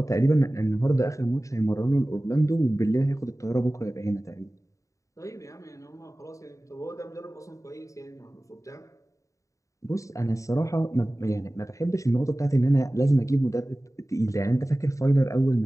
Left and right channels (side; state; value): right; late; 0.16 ms